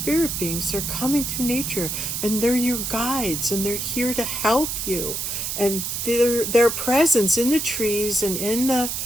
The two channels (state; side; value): noise; right; hiss, 3 dB below the sound